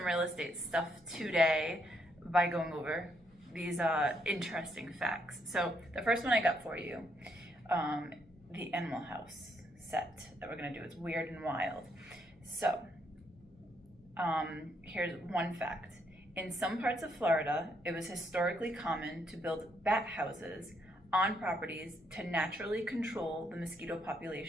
real estate stuff today by going over these interesting facts. So the first one I got for you, the Animal House set that we're going to do. It's weird and wild. So here's one fact. In some parts of Florida, it was historically common to build bat houses on properties to naturally control the mosquito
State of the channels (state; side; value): noise; left; hum, 29 dB below the sound